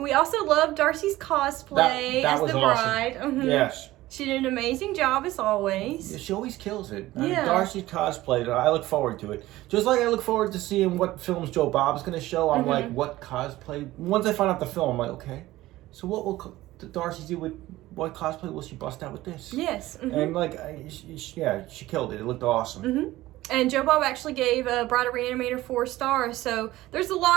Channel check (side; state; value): left; quieter; 16.8 dB